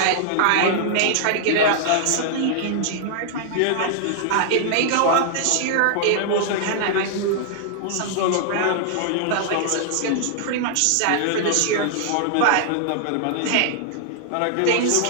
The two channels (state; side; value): different; both; correlation 0.00